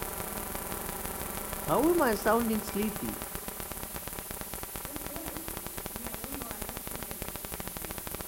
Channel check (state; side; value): identical; both; correlation 1.00